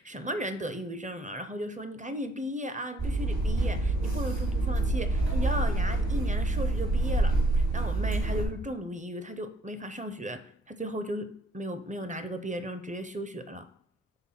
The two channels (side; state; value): both; normal; correlation 0.65